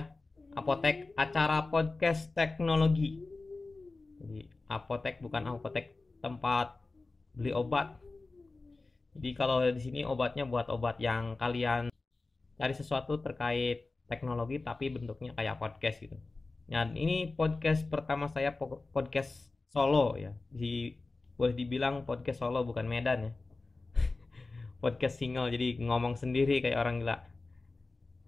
Apotek, acara podcast teknologi. Jadi Apotek bukan apotek tempat beli obat. Jadi kalau di sini obatnya buat obat yang kalian cari sesuatu terkait teknologi tapi bentuknya kayak podcast gitu. Dan ini podcast pertama saya, podcast solo ya. Boleh dibilang podcast solo bukan Medan ya. Podcast single, jadi ngomong sendiri kayak orang gila.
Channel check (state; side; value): quieter; right; 3.5 dB